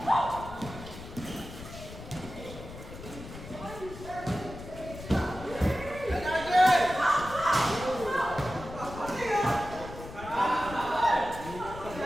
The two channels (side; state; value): left; noise; rumble, 13 dB below the sound